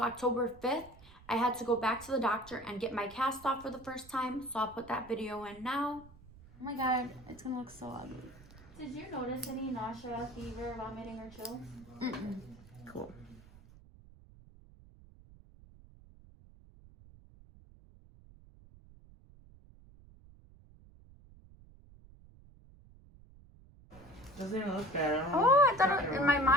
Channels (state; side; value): noise; right; rumble, 22 dB below the sound